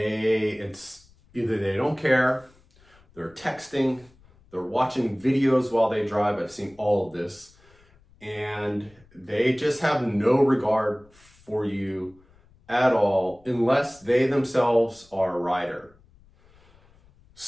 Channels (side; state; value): left; noise; rumble, 29 dB below the sound